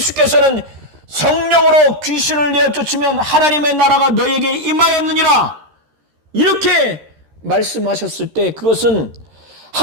성령으로 귀신을 내어 쫓으면 하나님의 나라가 너에게 임하였느니라 이렇게 말씀하셨을 때 그것은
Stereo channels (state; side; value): late; left; 13 ms